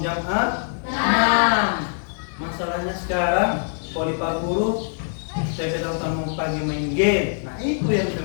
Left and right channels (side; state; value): right; silent; 63 dB below the other